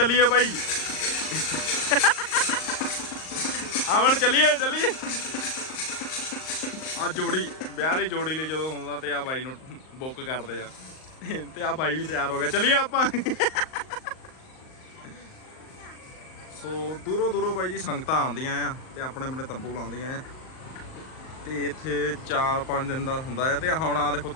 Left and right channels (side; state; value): right; late; 38 ms